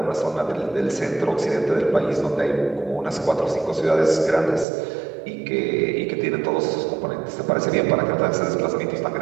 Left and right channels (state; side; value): drops out; left; at 4.7 s